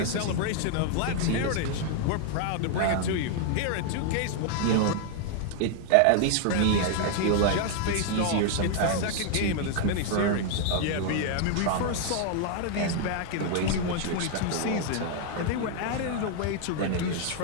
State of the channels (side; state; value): both; different; correlation 0.00